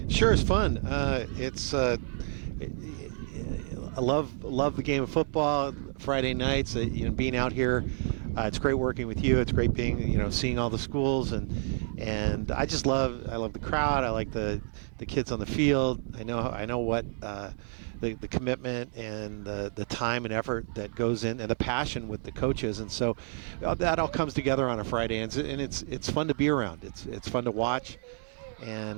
Sure, it's fun. I love the game of football. Friday nights, being out here. It's great working with you. It's great being, seeing all the schools, and I love the crowd. I like the kids on the field. I know what the commitment and the time and effort that goes in, and the passion with the coaches, and so that all comes together on a Friday, and it's fun to be around. It's fun to watch,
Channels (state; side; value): silent; left; digital silence